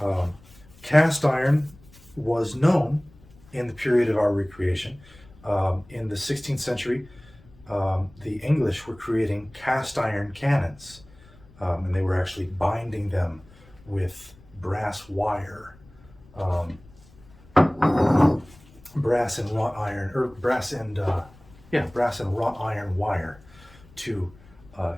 Cast iron was known in the period of our recreation. In the 16th century, the English were creating cast iron cannons, and they were actually binding them with brass wire, brass and wrought iron wire to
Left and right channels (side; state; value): left; noise; rumble, 24 dB below the sound